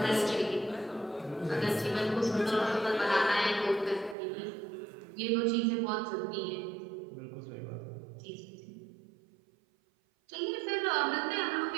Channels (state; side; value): drops out; left; at 4.2 s